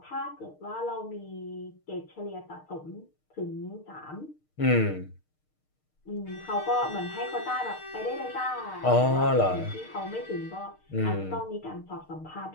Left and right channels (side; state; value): right; late; 6.5 ms